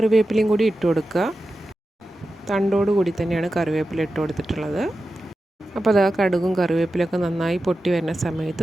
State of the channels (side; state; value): both; normal; correlation 0.92